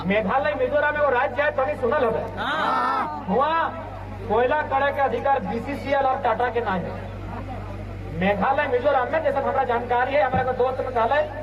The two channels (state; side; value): identical; both; correlation 1.00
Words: मेघालय मिजोरम में वो राज्य है, तो नहीं सुनल हो वहाँ कोयला करे के अधिकार बीसीसीएल और टाटा के नाम है। मेघालय मिजोरम में जैसे हमारा जानकारी है, हमारा दोस्त मेघालय,